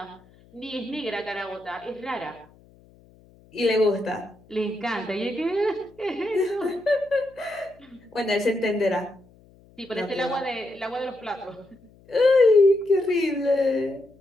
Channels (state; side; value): noise; left; hum, 28 dB below the sound